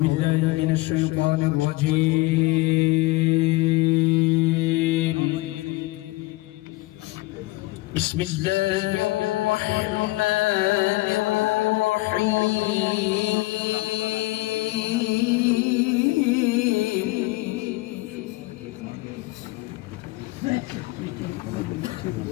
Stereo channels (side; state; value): right; quieter; 20.6 dB